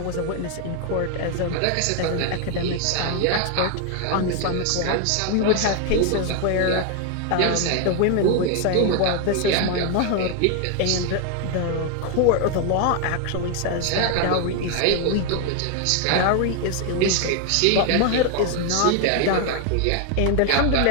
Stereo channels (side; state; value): both; different; correlation 0.01